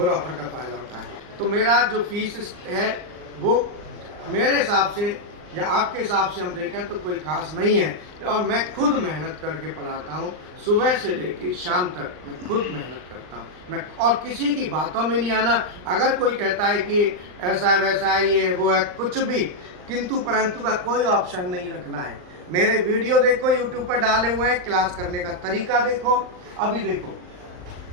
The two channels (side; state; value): left; late; 39 ms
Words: ऑफर का फ़ायदा उठाएं। तो मेरा जो फीस है वो मेरे हिसाब से या आपके हिसाब से हम देखें तो कोई खास नहीं है, और मैं खुद मेहनत करके पढ़ाता हूँ, सुबह से लेकर शाम तक मैं खुद मेहनत करता हूँ मैं, और किसी की बातों में नहीं आना। अगर कोई कहता है कि ऐसा वैसा है, ये वो है, कुछ भी किंतु परंतु का कोई ऑप्शन नहीं रखना है। मेरे वीडियो देखो, यूट्यूब पर डाले हुए हैं, क्लास करने का तरीका देखो। अभी देखो,